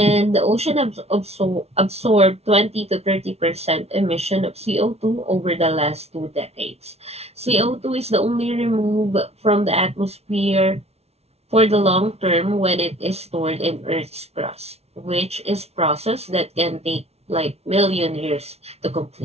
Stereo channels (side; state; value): left; late; 0.30 ms